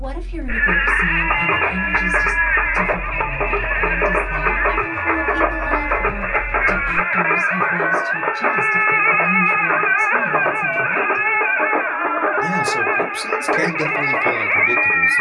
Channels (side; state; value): both; identical; correlation 1.00